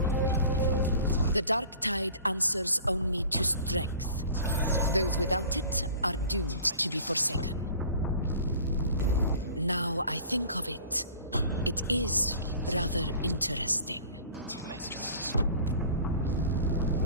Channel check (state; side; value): inverted; both; correlation -0.45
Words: The dark tide answers only to strength. Those without it are doomed to be forsaken. Now I think of it, it is rather interesting.